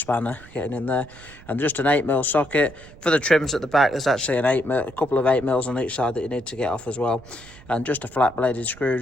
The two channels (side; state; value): right; noise; rumble, 21 dB below the sound